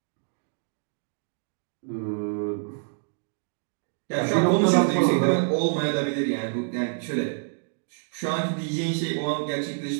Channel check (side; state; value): left; silent; 60 dB below the other